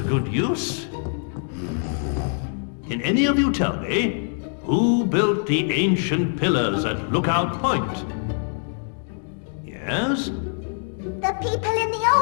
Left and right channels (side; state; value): right; silent; 57 dB below the other